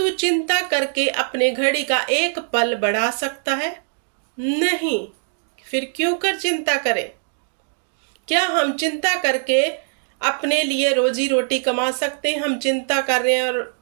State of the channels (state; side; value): silent; left; 64 dB below the other